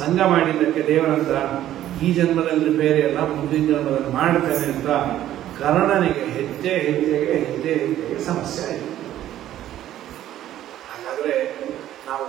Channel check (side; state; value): left; quieter; 12.6 dB